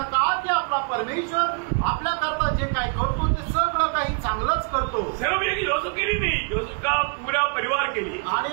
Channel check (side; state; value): left; quieter; 35.6 dB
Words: का की आपला परमेश्वर आपल्याकरता जे काही करतो ते सगळं काही चांगलंच करतो। सिर्फ एक योसेफ के लिए नहीं, योसेफ का पूरा परिवार के लिए।